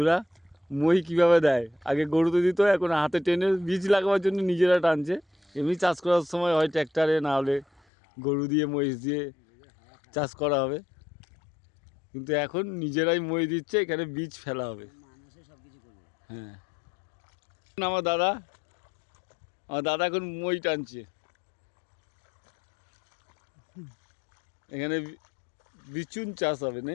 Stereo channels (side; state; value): right; drops out; at 7.8 s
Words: মই কীভাবে দেয়, আগে গরুতে দিত, এখন হাতে টেনে বীজ লাগাবার জন্য নিজেরা টানছে। এমনি চাষ করার সময় হয় ট্র্যাক্টরে, না হলে গরু দিয়ে মহিষ দিয়ে চাষ করা হবে, কিন্তু এখন নিজেরাই মই দিচ্ছে, এখানে বীজ ফেলা হবে। হ্যাঁ, আমার দাদা এখন মই টানছে। এখানে বিচুন চাষ হবে না,